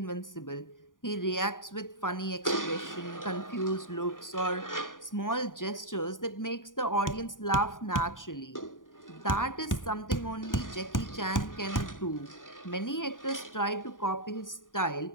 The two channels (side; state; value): right; late; 0.89 ms